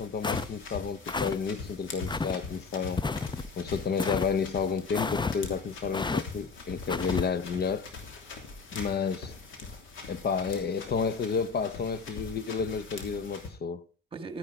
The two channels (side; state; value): right; quieter; 5.0 dB